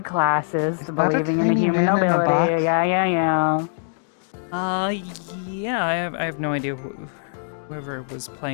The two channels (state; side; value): silent; right; digital silence